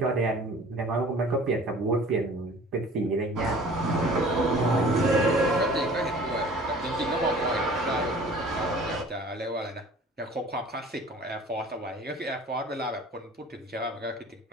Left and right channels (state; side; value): normal; both; correlation 0.47